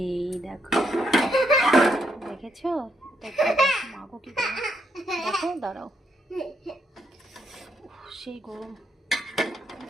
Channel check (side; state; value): both; normal; correlation 0.77